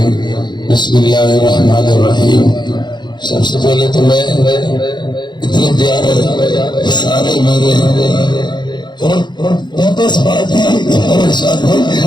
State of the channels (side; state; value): right; late; 0.21 ms